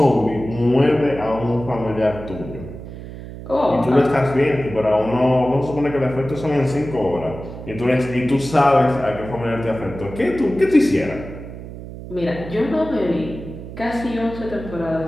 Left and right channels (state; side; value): noise; right; hum, 12 dB below the sound